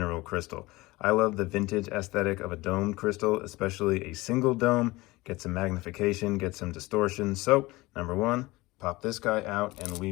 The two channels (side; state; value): right; quieter; 20.8 dB